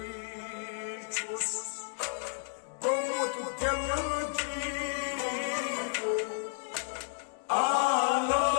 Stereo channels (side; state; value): right; silent; digital silence